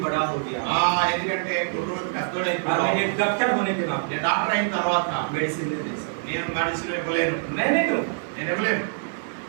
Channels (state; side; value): silent; left; 59 dB below the other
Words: बड़ा हो गया ఎందుకంటే కుర్రోడు और मैं పెద్దోడైపోయాడు. एक डॉक्टर होने के नाते నేను డాక్టర్ అయిన తర్వాత मेडिसिन नहीं दे सकता నేను మెడిసిన్ ఇవ్వలేను. मैं नहीं दूंगा నేను ఇవ్వలేను.